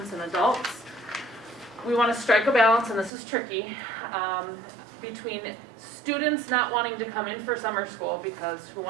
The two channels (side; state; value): left; drops out; at 3.1 s